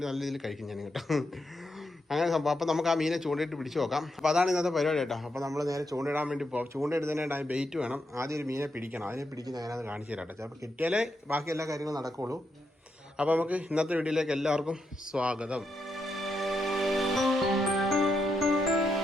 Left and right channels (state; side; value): normal; both; correlation 0.82